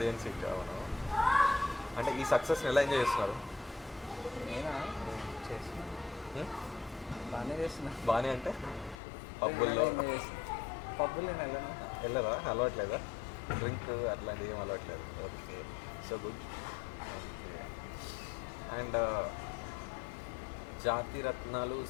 hit. అవును. అంటే ఈ సక్సెస్ ఎలా ఎంజాయ్ చేస్తున్నారు? నేనా చేస్తున్నా, బాగానే చేస్తున్నా. బాగానే అంటే పబ్బుల్లో పబ్బులు నేను వెళ్ళను. వెళ్ళదా? అలవాట్లేదా? డ్రింక్ అట్లాంటివి ఏం అలవాట్లేదు. Okay, so good. Okay. And Jathi Ratnalu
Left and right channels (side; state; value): right; drops out; at 9.0 s